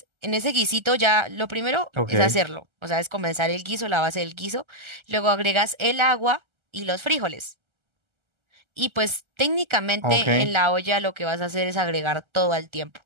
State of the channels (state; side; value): late; left; 1.3 ms